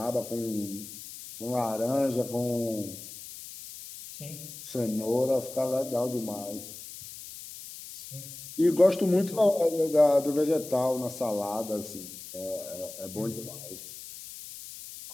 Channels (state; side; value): noise; left; hiss, 13 dB below the sound